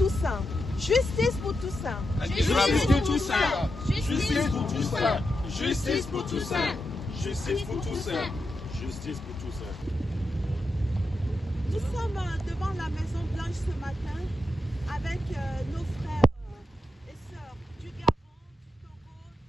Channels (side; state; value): both; normal; correlation 0.87